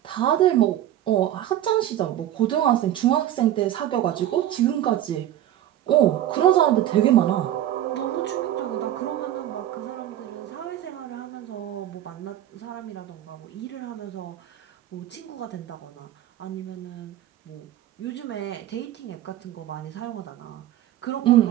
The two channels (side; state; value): left; quieter; 12.4 dB